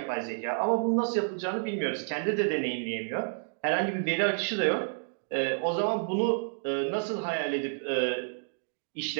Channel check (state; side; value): silent; left; digital silence